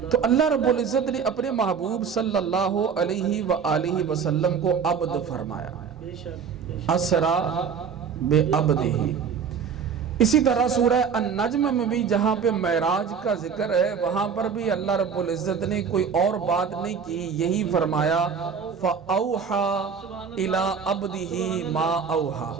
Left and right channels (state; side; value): quieter; left; 6.5 dB